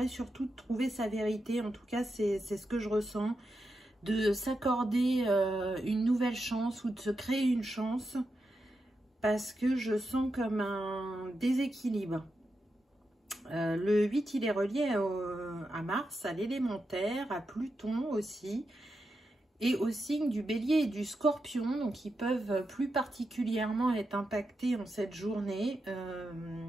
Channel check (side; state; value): both; normal; correlation 0.87